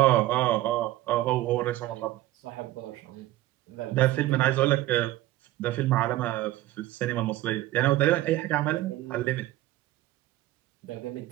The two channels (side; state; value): left; quieter; 16.2 dB